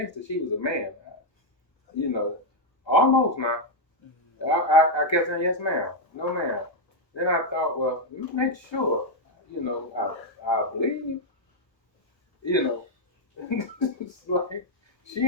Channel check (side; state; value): right; late; 1.3 ms